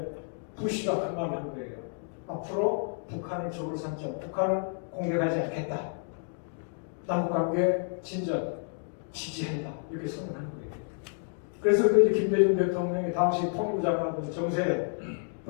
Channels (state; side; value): silent; right; 58 dB below the other